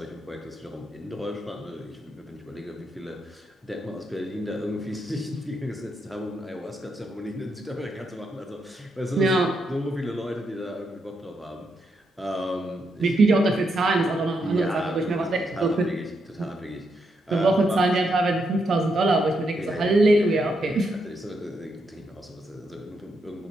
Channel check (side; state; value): both; normal; correlation 0.80